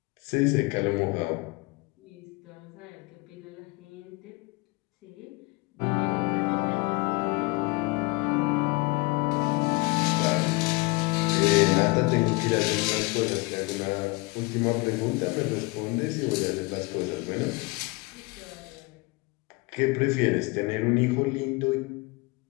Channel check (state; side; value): quieter; right; 26.0 dB